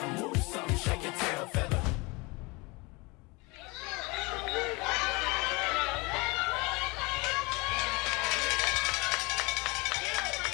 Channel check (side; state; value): right; quieter; 26.2 dB